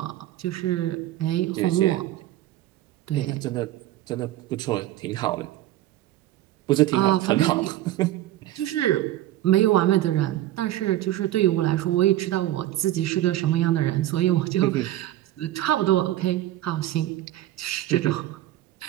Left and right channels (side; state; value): left; quieter; 14.4 dB